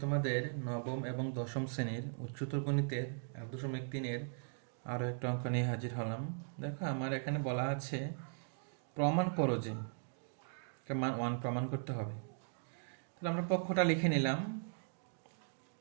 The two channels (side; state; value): left; silent; digital silence